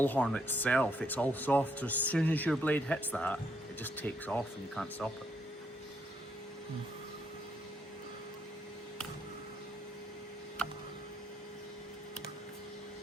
horn itself, it's all soft. So as soon as your blade hits that, it just takes off and you can't stop it.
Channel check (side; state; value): both; normal; correlation 0.74